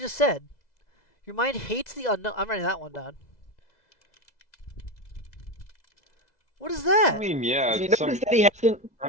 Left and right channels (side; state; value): right; late; 2.0 ms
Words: said. Your mind hates the unknown. I'm writing that one down. What is that? I mean, yeah. You notice that he hasn't. I